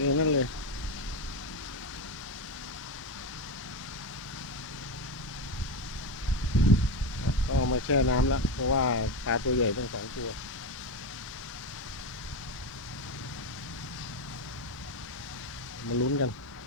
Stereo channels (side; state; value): both; normal; correlation 0.13